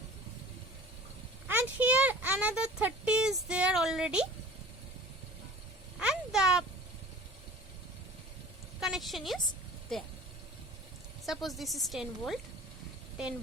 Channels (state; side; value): normal; both; correlation 0.43